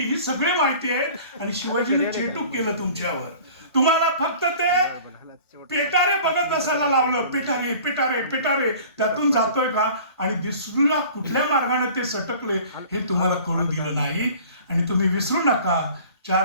सगळे माहिती आहेत. आणि शिवाजीने चेटूक केलं तुमच्यावर. तुम्हाला फक्त ते पेटारे बघत असायला लावलं, पेटारे पेटारे पेटारे, त्यातून जातोय का आणि दुसऱ्या कुठल्या मार्गाने ते सटकले हे तुम्हाला कळू दिलं नाही. आणि तुम्ही विसरू नका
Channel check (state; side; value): inverted; both; correlation -0.45